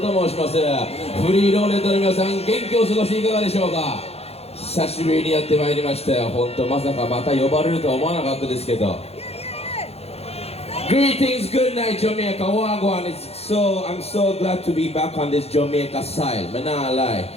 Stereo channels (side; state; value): right; late; 0.30 ms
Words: 申します。フリーローレットの皆さん、元気を過ごしていかがでしょうか。久しぶりにやってまいりましたよ。本当まさかまた呼ばれるとは思わなかったですけど。Greetings, good night, Jamaica. Wagwan. I'm so glad to be back on this Jamaica side. Man, nah lie.